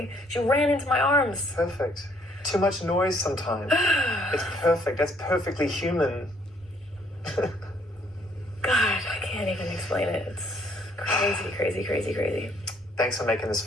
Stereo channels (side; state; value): both; normal; correlation 0.65